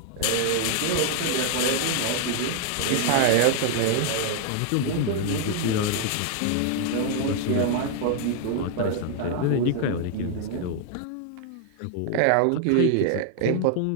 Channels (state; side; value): different; both; correlation 0.00